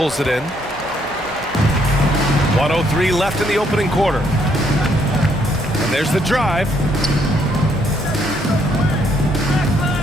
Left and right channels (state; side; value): noise; right; hum, 23 dB below the sound